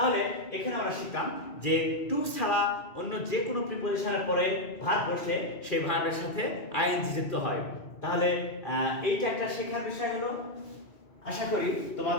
এখানে আমরা শিখলাম যে টু ছাড়া অন্য যে কোনো প্রিপজিশনের পরে ভার্ব বসলে সেই ভার্বের সাথে আইএনজি যুক্ত হয়। তাহলে এইটা একটা শেখার বিষয় হলো। আশা করি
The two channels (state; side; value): late; right; 2.4 ms